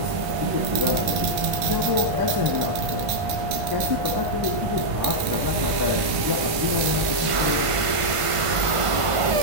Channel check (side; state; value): left; late; 1.5 ms